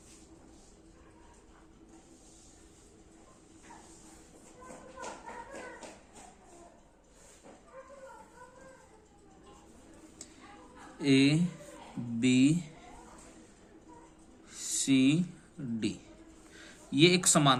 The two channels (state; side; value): identical; both; correlation 1.00